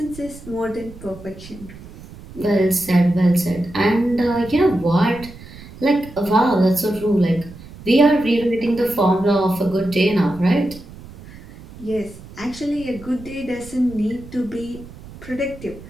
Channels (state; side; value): noise; right; rumble, 17 dB below the sound